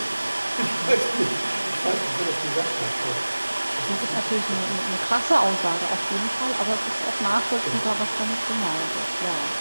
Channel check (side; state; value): both; inverted; correlation -1.00